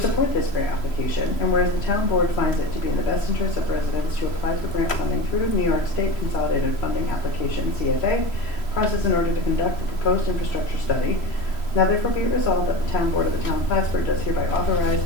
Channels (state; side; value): late; right; 3.0 ms